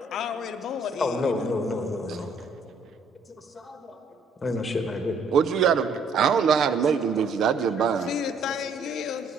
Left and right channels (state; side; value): quieter; left; 3.5 dB